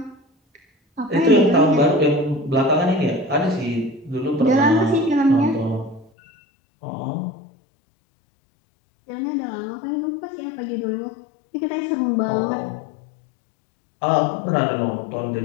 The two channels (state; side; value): drops out; right; at 6.1 s